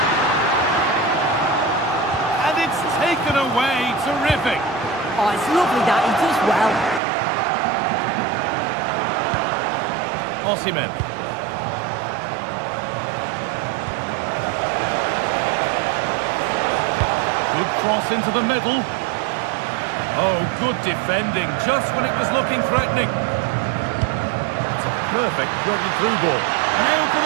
And it's taken away. Terrific. Oh, it's lovely that. He does well. Osimhen. Good cross into the middle. Oh, good defending, just when it was looking threatening. It's a perfect threaded through ball. Now for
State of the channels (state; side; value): drops out; left; at 7.0 s